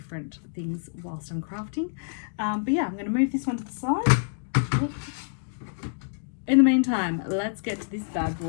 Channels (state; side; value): silent; right; digital silence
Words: things whilst I'm crafting. But yeah, I'm going to move this one to the side. In the meantime, let's get to this bad